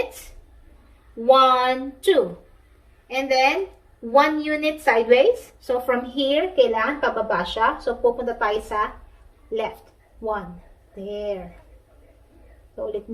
1, 2. And then, 1 unit sideways. So, from here, kailangan pababa siya. So, pupunta tayo sa left. 1. There. So, ulit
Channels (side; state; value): both; identical; correlation 1.00